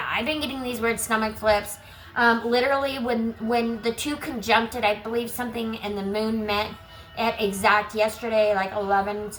I've been getting these weird stomach flips. Literally, when the two conjuncted, I believe something and the moon met at exact yesterday, like 11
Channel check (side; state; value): both; identical; correlation 1.00